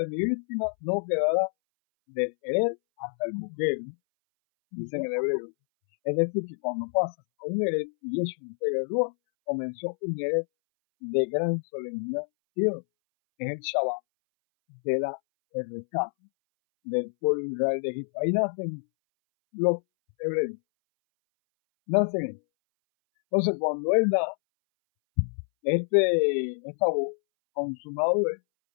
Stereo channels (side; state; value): right; silent; 60 dB below the other